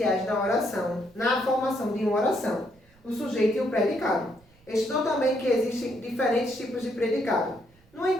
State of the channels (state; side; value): noise; right; rumble, 30 dB below the sound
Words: na oração, na formação de uma oração, o sujeito e o predicado. Estudou também que existem diferentes tipos de predicado. No